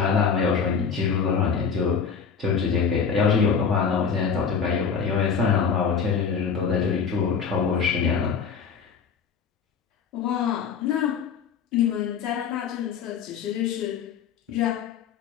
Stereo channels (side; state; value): right; quieter; 6.3 dB